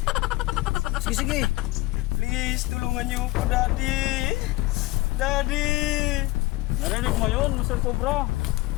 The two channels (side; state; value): right; quieter; 19.9 dB